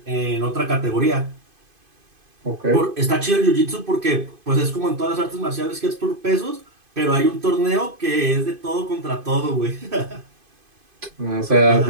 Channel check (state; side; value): late; left; 2.5 ms